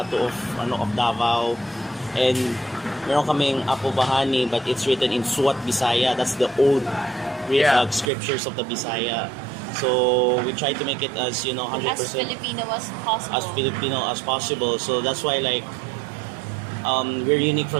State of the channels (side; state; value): left; drops out; at 8.1 s